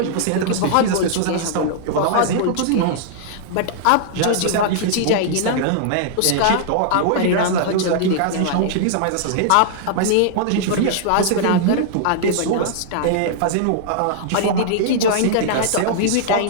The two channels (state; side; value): different; both; correlation -0.01